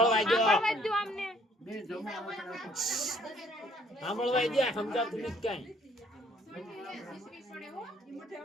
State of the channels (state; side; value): normal; both; correlation 0.62